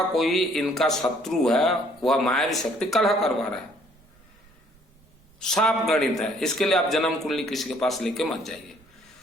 कोई इनका शत्रु है, वह मायावी शक्ति कलह करवा रहा है। साफ गणित है, इसके लिए आप जन्म कुंडली किसी के पास लेके मत जाइए।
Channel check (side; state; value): right; noise; rumble, 30 dB below the sound